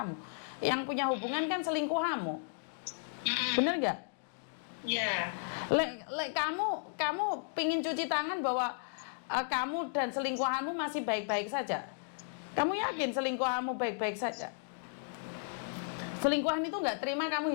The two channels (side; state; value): right; silent; digital silence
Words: Yang punya hubungan kan selingkuhanmu, bener nggak? Ya. Kamu pingin cuci tangan bahwa kamu dan selingkuhanmu masih baik-baik saja. Kamu yakin selingkuhanmu baik-baik saja? Selingkuhan itu nggak terima kamu